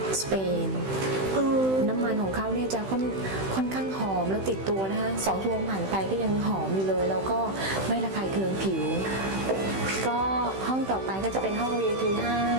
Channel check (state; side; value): late; left; 16 ms